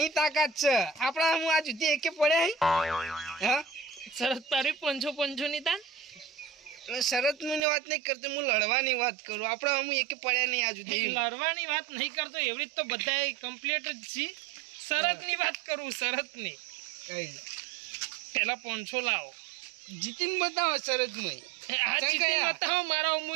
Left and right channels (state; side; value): drops out; left; at 7.6 s